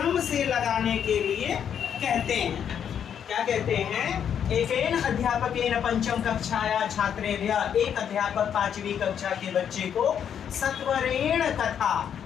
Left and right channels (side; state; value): right; quieter; 8.5 dB